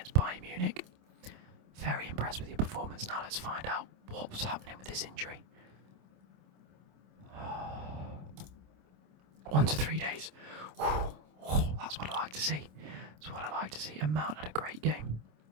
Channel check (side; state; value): left; late; 27 ms